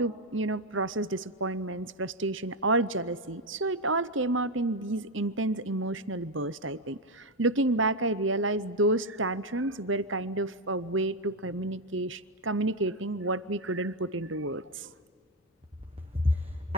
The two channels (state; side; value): normal; both; correlation 0.07